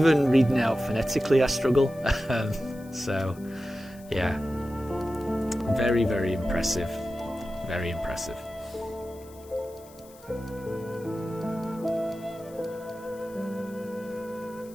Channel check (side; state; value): left; noise; hiss, 24 dB below the sound